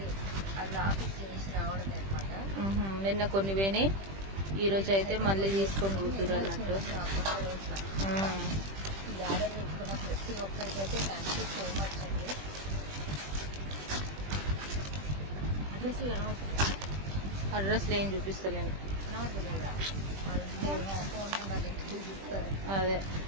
అది ఆఫీస్ చేసి రావడం అనమాట. నిన్న కొన్ని పోయినాయి, ఈ రోజు అయితే మళ్ళీ తీసుకొని కూతురు అన్నట్టు. ఆర్డర్ పెట్టుకున్న ప్రతి ఒక్కరికైతే థ్యాంక్ యూ సో మచ్ అండి. అడ్రస్ కనబడుతుందా? అడ్రస్లు ఏం చూపిస్తలేను. కనబడతలేదా? ఫోన్ నెంబర్ చూపిస్తారు. అదే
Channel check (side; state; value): left; late; 20 ms